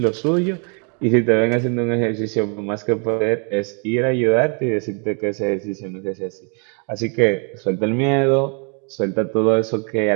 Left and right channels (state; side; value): quieter; left; 38.7 dB